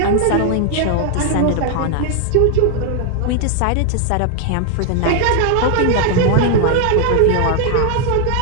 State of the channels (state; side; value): different; both; correlation 0.00